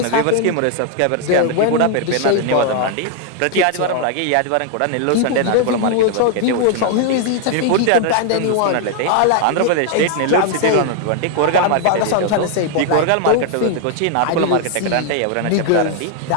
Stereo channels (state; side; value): different; both; correlation 0.00